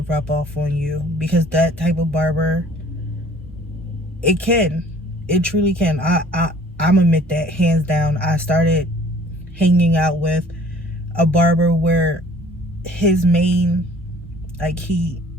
rub off on you, because that type of barber, it truly can. I'm admit that hands down. I started hanging out with a barber where his main, like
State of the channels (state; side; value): normal; both; correlation 0.53